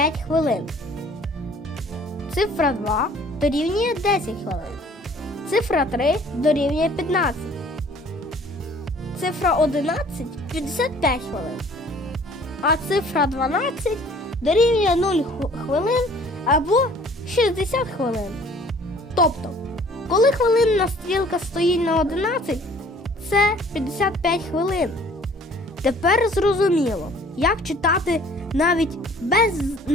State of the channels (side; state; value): both; normal; correlation 0.53